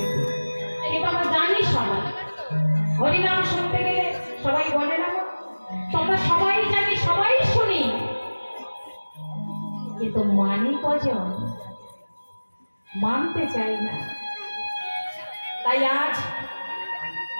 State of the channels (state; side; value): inverted; both; correlation -1.00